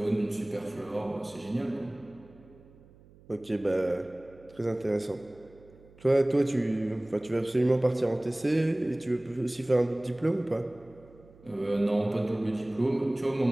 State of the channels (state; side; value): noise; right; hum, 25 dB below the sound